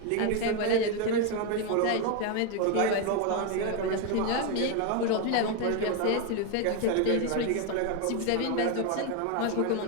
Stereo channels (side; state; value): both; different; correlation 0.02